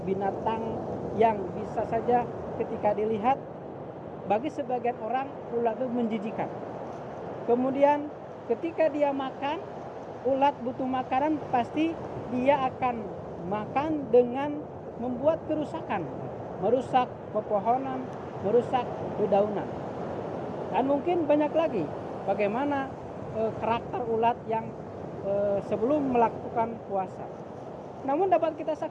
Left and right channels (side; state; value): both; identical; correlation 1.00